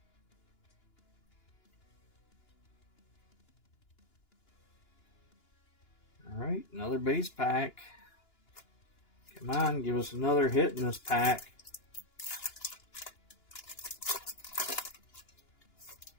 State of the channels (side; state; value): right; late; 2.9 ms